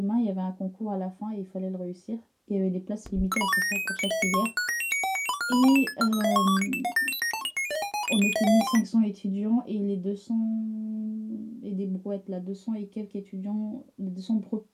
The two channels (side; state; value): both; identical; correlation 1.00